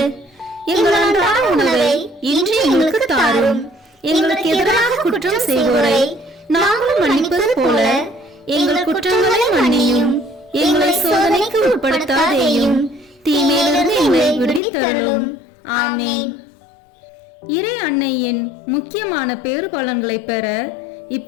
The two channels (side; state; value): right; drops out; at 14.6 s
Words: எங்கள் அன்றாட உணவை இன்று எங்களுக்கு தாரும். எங்களுக்கு எதிராக குற்றம் செய்வோரை நாங்களும் மன்னிப்பது போல எங்கள் குற்றங்களை மன்னியும். எங்களை சோதனைக்கு உட்படுத்தாதேயும், தீமையிலிருந்து எங்களை விடுவித்தருளும். ஆமேன். இறை அன்னையின் முக்கியமான பேறு பலன்களை பெற